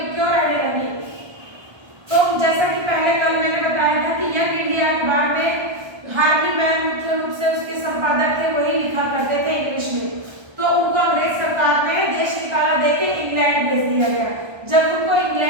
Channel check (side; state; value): left; late; 1.3 ms